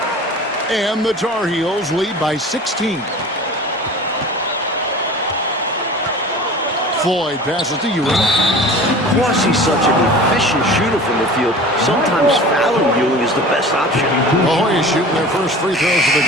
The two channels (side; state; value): both; normal; correlation 0.39